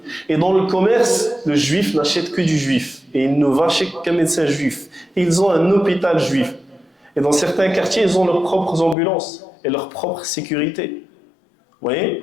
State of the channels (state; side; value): drops out; right; at 9.0 s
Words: Et dans le commerce, le juif n'achète que du juif. Et il ne va chez qu'un médecin juif. Et ils ont un hôpital juif. Et dans certains quartiers, ils ont leurs propres ambulances et leur propre sécurité. Vous voyez?